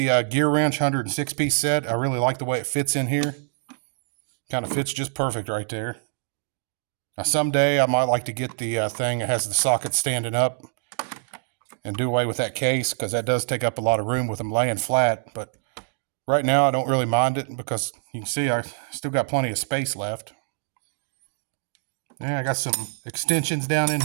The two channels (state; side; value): silent; left; digital silence